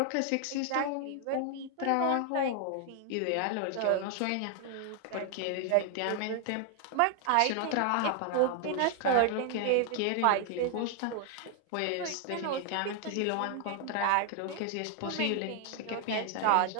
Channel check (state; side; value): different; both; correlation 0.00